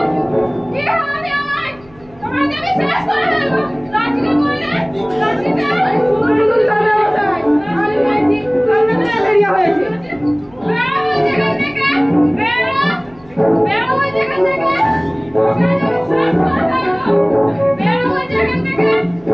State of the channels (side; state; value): right; noise; hum, 27 dB below the sound